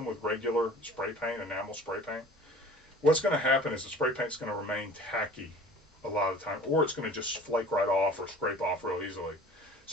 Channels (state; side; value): normal; both; correlation 0.45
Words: with regular spray paint, enamel spray paint, what's going to happen is the spray paint's going to remain tacky a lot of the time, or it's going to just flake right off or scrape off real easily.